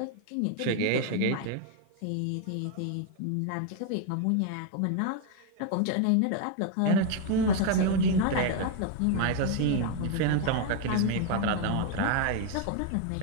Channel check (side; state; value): both; different; correlation 0.01